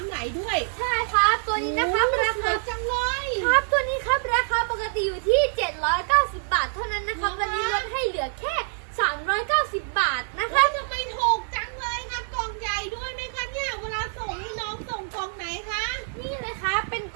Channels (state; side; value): silent; left; 61 dB below the other